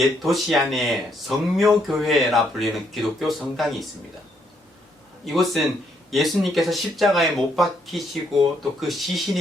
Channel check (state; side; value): normal; both; correlation 0.73